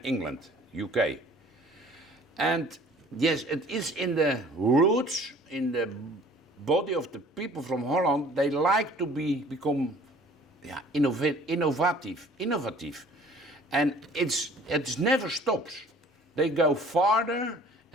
England, UK. And yes, it is in the roots, in the body of the people from Holland. They like to become innovative. And it never stops. They go farther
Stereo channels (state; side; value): normal; both; correlation 0.51